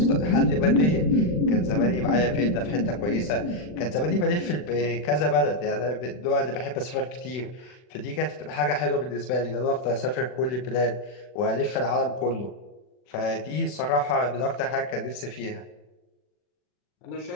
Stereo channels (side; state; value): right; late; 40 ms